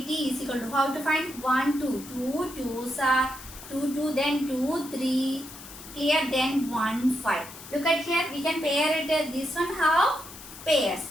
is equal to, how to find? 1 2. 2 2s are 2 2, then 2 3. Clear? Then 1 5. Look at here. We can pair it. This one have pairs.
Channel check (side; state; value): left; noise; hiss, 15 dB below the sound